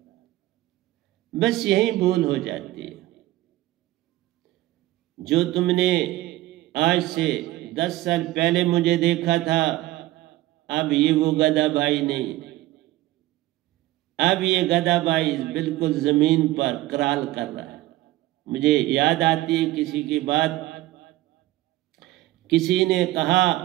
बस यही भूल हो जाती है। जो तुमने आज से 10 साल पहले मुझे देखा था, अब ये वो गधा भाई नहीं। अब ये गधा भाई बिल्कुल जमीन पर कराल कर रहा है। मुझे याद आती है किसी की बात, किसी ने कहा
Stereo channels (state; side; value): quieter; left; 16.9 dB